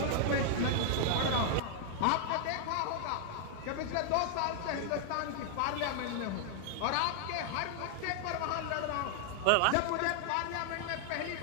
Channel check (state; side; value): different; both; correlation 0.00